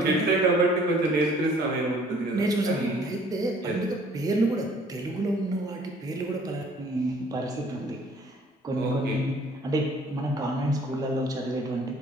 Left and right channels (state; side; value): normal; both; correlation 0.57